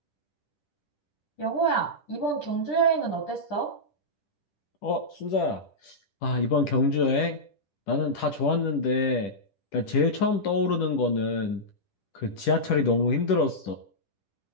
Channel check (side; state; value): right; late; 10 ms